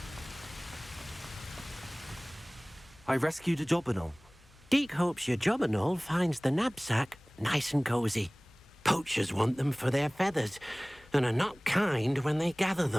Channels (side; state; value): left; noise; hum, 27 dB below the sound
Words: I rescued a Jobberknoll. Deke hopes your Jobberknoll finds the knapsack nice and cozy. Poachers want them for their feathers and are not kind when they gather